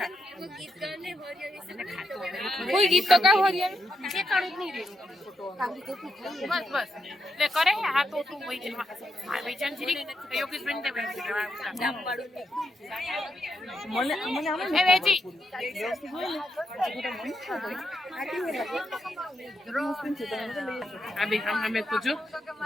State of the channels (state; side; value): normal; both; correlation 0.83